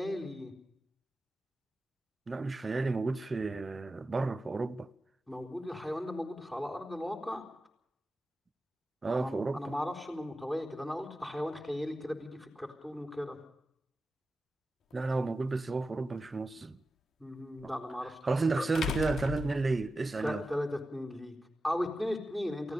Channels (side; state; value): both; normal; correlation 0.92